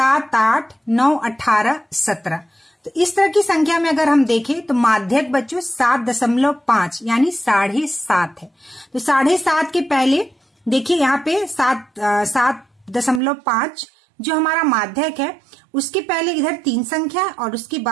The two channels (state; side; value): drops out; left; at 13.2 s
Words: 8, 9, 18, 17, तो इस तरह की संख्या में अगर हम देखें तो माध्यक बच्चों 7.5 यानी 7.5 है। तो 7.5 के पहले देखिए यहाँ पे 7.5 जो हमारा माध्यक है, उसके पहले इधर 3 संख्या और उसके